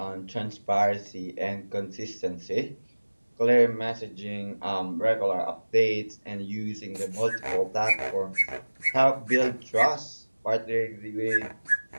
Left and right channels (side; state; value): both; inverted; correlation -1.00